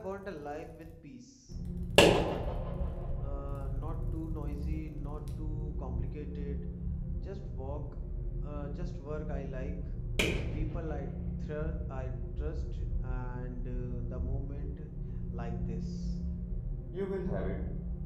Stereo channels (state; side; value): identical; both; correlation 1.00